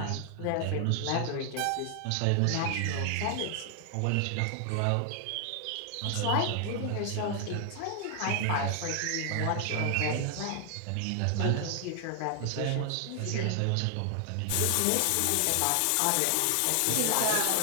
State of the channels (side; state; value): both; different; correlation 0.00